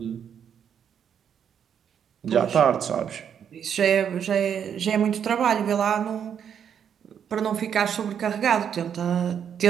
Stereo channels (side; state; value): left; quieter; 8.2 dB